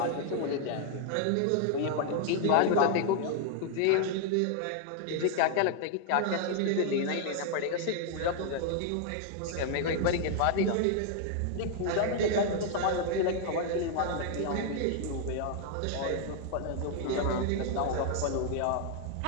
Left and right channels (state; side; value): different; both; correlation 0.00